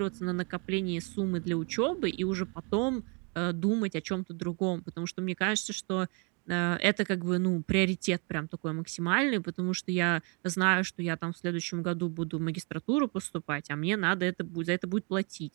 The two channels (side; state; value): left; quieter; 34.5 dB